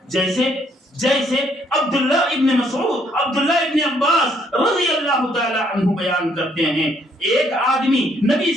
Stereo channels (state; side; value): normal; both; correlation 0.68